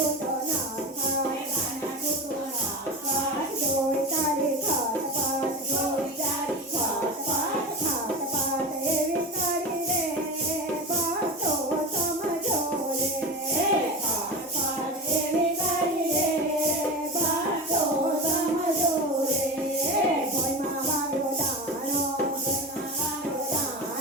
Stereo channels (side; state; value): both; normal; correlation 0.26